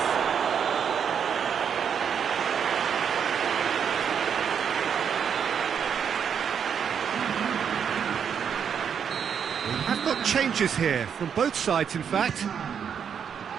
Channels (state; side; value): quieter; left; 7.6 dB